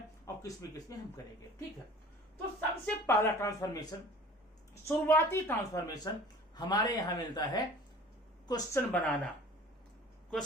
और किसमें हम करेंगे। ठीक है, तो सबसे पहला ट्रांसफॉर्मेशन, शुरुआती ट्रांसफॉर्मेशन हमारे यहां मिलता है क्वेश्चन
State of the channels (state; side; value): normal; both; correlation 0.45